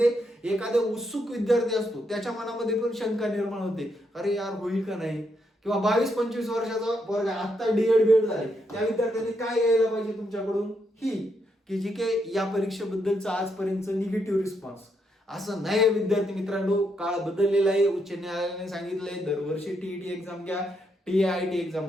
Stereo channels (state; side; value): normal; both; correlation 0.78